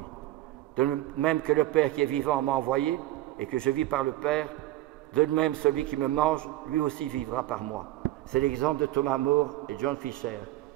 De même que le Père qui est vivant m'a envoyé et que je vis par le Père, de même celui qui me mange, lui aussi vivra par moi. C'est l'exemple de Thomas More et John Fisher.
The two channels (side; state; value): left; quieter; 15.8 dB